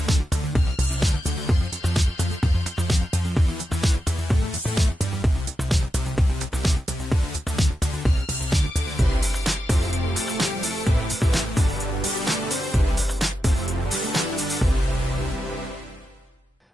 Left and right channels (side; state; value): both; normal; correlation 0.88